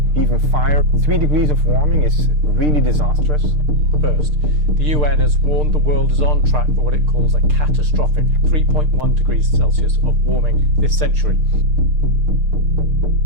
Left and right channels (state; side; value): late; left; 6.6 ms